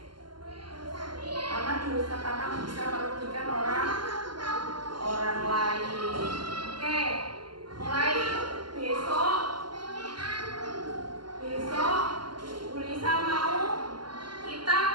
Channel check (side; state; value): left; late; 0.71 ms